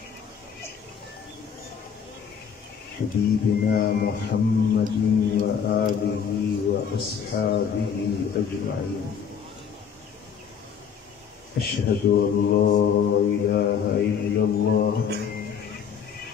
हबीबिना मुहम्मदिन व आलिहि व अस्हाबिहि अजमईन। अशहदु अल्ला इलाहा इल्लल्लाह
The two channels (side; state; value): right; quieter; 7.2 dB